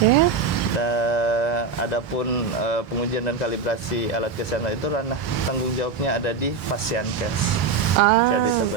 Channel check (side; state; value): left; quieter; 5.0 dB